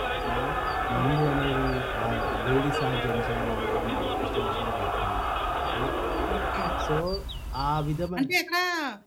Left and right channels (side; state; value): both; identical; correlation 1.00